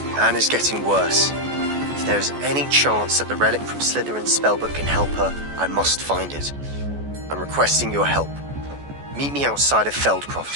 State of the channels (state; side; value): late; left; 14 ms